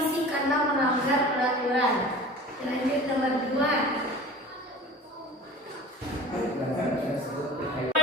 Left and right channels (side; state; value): both; normal; correlation 0.40